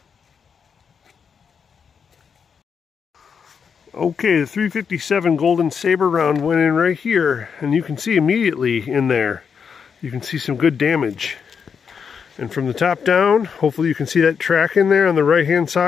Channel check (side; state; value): right; quieter; 6.5 dB